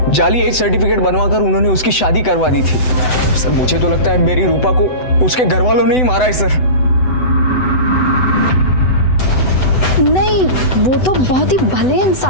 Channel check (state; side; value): late; right; 7.9 ms